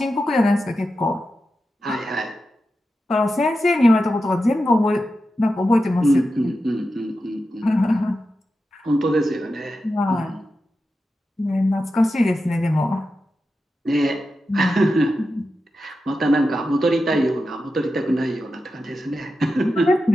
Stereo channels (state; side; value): normal; both; correlation 0.90